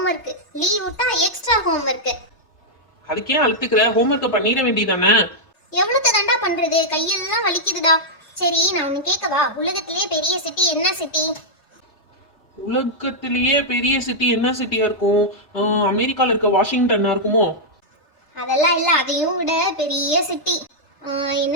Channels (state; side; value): late; right; 3.3 ms